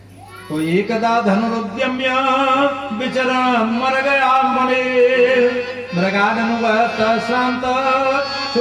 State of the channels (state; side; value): identical; both; correlation 1.00